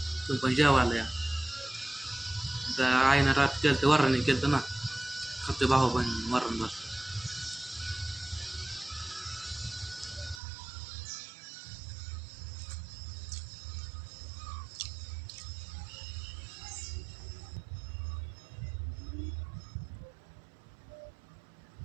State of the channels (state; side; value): drops out; left; at 10.4 s